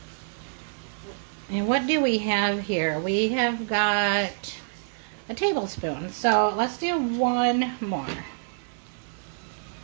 And what do we have here? We have got a tablespoon, so let's do one more.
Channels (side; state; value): left; silent; digital silence